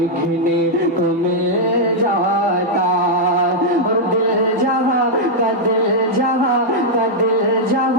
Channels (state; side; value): normal; both; correlation -0.04